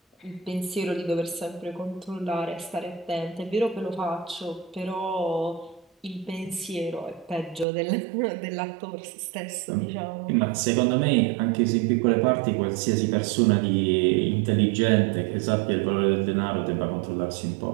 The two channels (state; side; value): drops out; left; at 7.7 s